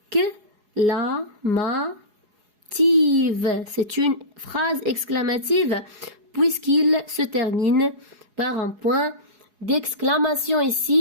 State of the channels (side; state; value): left; late; 4.8 ms